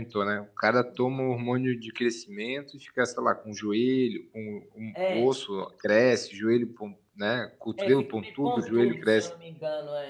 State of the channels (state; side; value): identical; both; correlation 1.00